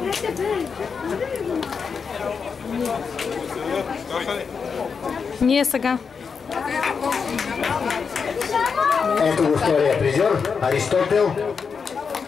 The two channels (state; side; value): quieter; right; 5.8 dB